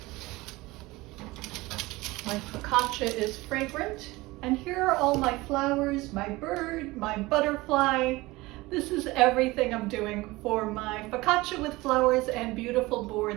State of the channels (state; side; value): quieter; left; 20.8 dB